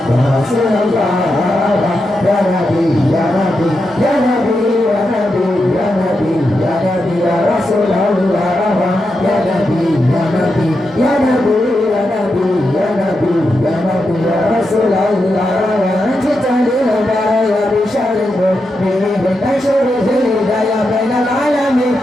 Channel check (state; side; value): normal; both; correlation 0.86